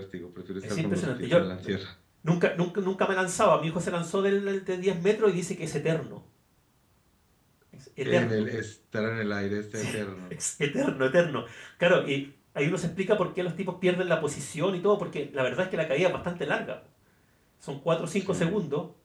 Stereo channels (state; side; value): identical; both; correlation 1.00